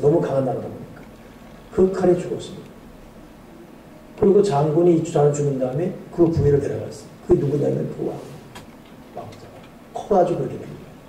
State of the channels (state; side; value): identical; both; correlation 1.00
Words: 너무 강한 나라다 보니까. 그 칼에 죽었습니다. 그리고 장군이 주장을 죽인 다음에 그 부위를 데려갔어요. 그게 누구냐면 그 왕자가 커가지고 그렇게 됩니다.